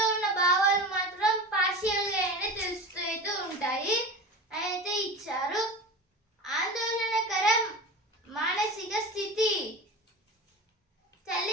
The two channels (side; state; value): both; normal; correlation 0.31